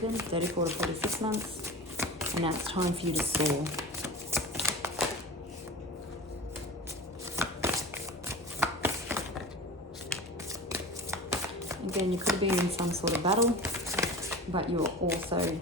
34 to 46 months. And now it's time for you to soar. Again, you could have been in some sort of battle, but you're also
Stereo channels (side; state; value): both; normal; correlation 0.34